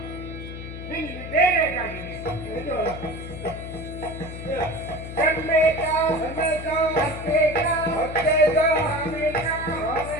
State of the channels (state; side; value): noise; left; hum, 10 dB below the sound